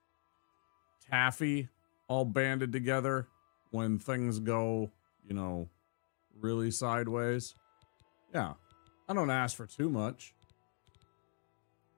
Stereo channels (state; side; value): silent; right; 51 dB below the other